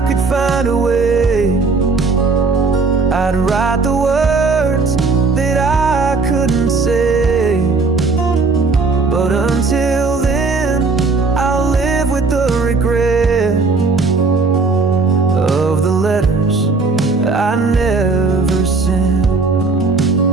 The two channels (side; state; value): left; quieter; 4.1 dB